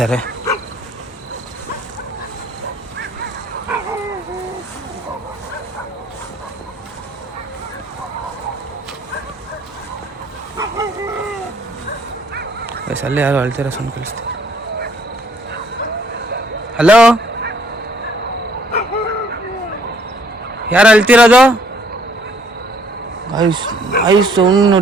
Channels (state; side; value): normal; both; correlation 0.63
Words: ಗೈಸ್ ಅಲ್ಲೇ ಯಾರೋ ಅಳ್ತಿರೋ ಸೌಂಡ್ ಕೇಳಿಸ್ತಾರೆ. ಹಲೋ, ಯಾರು ಅಳ್ತಿರೋದು? ಗೈಸ್ ಸೌಂಡ್